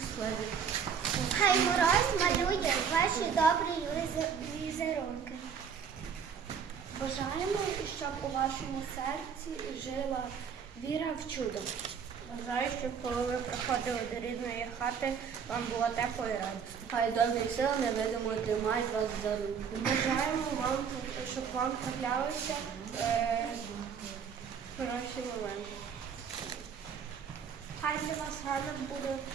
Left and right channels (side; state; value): left; quieter; 7.0 dB